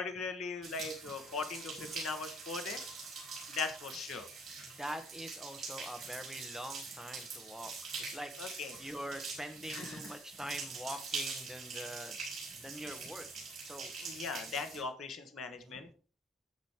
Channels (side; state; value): both; normal; correlation 0.59